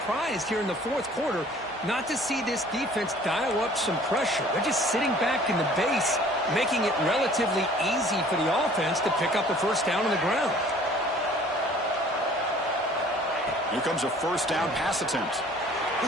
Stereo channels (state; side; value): normal; both; correlation 0.52